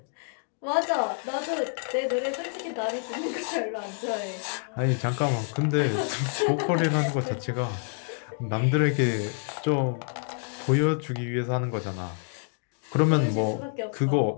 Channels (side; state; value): right; silent; 60 dB below the other